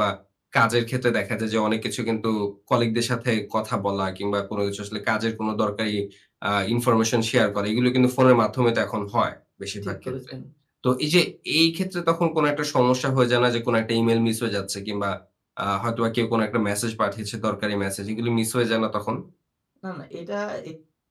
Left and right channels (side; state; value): both; identical; correlation 1.00